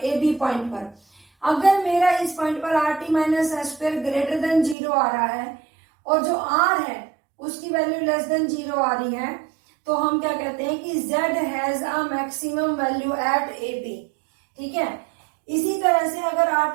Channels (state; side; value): drops out; left; at 4.8 s